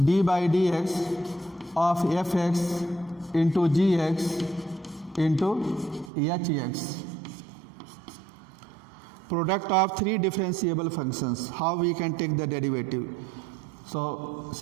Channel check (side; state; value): left; drops out; at 6.1 s